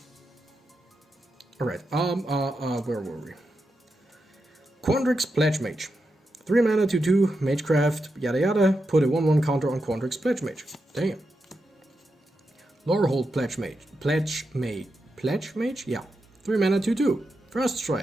Alright, where were we? Quadrax Pledge Mage. 3 mana, 2/2, Magecraft, yada yada. Put a 1/1 counter on Quadrax Pledge Mage. Damn. Lorehold Pledge Mage? Yeah. 3 mana, 2/2. First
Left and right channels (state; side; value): normal; both; correlation 0.87